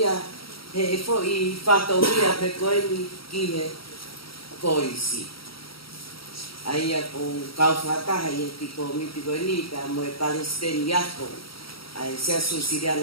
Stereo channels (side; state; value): right; late; 0.75 ms